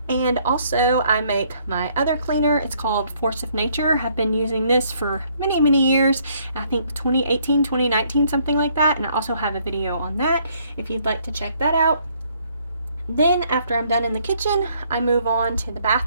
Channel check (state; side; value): inverted; both; correlation -0.66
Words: And also I make my other cleaner. It's called Force of Nature. I've been using this for many years. I think 2018, 2019, something like that. And I also have a video on that if you'd like to check that out. Then after I'm done in the kitchen, I move on to the